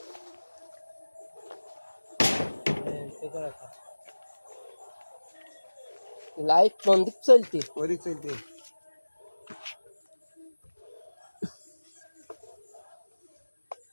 লাইট কোন দিক চলছে, ওই দিক চলছে,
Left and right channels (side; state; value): both; inverted; correlation -1.00